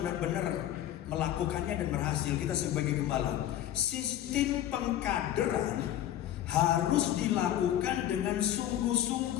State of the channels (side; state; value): right; quieter; 12.0 dB